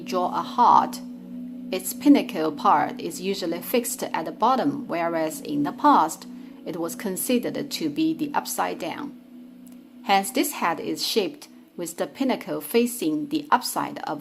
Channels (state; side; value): identical; both; correlation 1.00